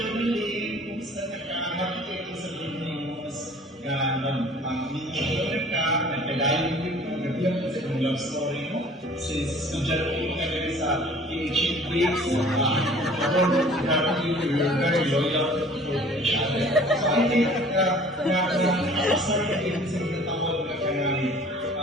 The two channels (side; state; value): both; normal; correlation 0.49